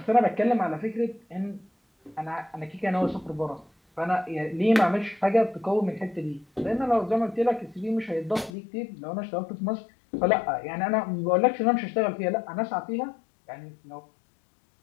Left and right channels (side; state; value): right; drops out; at 8.5 s